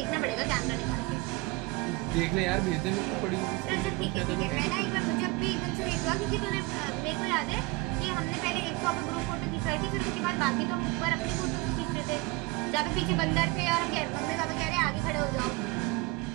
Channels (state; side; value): quieter; left; 23.3 dB